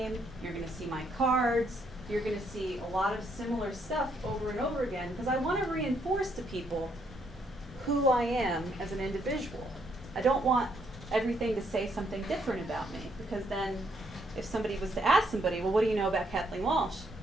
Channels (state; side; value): normal; both; correlation 0.73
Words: you're going to see my cards, you're going to see a lot of similar stuff over and over again because I want to reinforce to people who I am as an individual. I don't want everything to say something different about me because then if somebody was to ask somebody, well, what do you know about Kathleen Walsh?